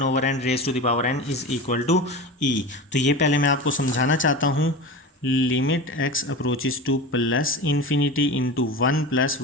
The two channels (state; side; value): normal; both; correlation 0.28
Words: over n raise to the power n is equal to e. तो ये पहले मैं आपको समझाना चाहता हूँ। Limit x approaches to plus infinity into 1 plus